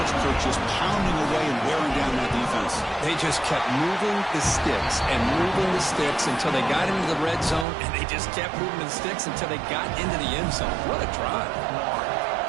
Kirk, just pounding away and wearing down that defense. They just kept moving the sticks and moving the sticks until they got into the red zone, and they just kept moving the sticks until they got into the end zone. What a drive.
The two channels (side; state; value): left; drops out; at 7.7 s